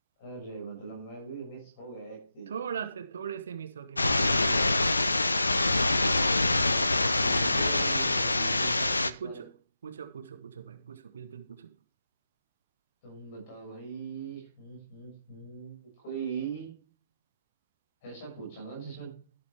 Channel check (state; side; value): inverted; both; correlation -0.90